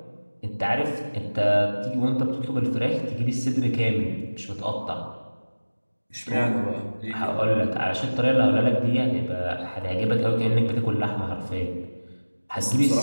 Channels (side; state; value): both; inverted; correlation -1.00